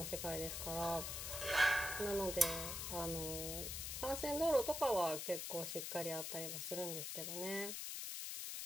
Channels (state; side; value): noise; left; hiss, 4 dB below the sound